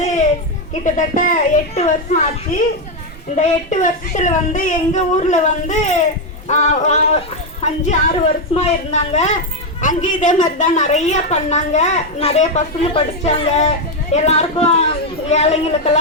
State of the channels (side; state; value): both; normal; correlation 0.04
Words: கிட்டத்தட்ட 8 வருஷம் ஆச்சு. இந்த 8 வருஷத்துல வந்து எங்கள் ஊரில் வந்து 5-6 வருஷமா இருந்தாங்க. அங்கேயும் இதே மாதிரி தான் நிறைய பண்ணாங்க. நிறைய பசங்க படித்தாங்க. எல்லாருக்கும்